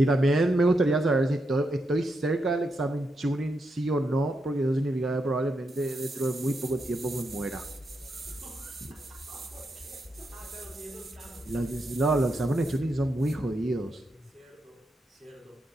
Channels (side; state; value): both; normal; correlation 0.83